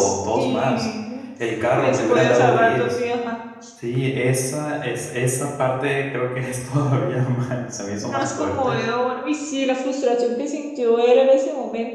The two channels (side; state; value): both; identical; correlation 1.00